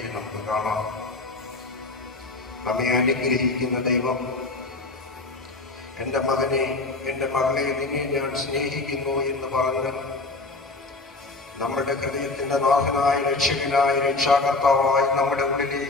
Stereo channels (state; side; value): quieter; right; 3.4 dB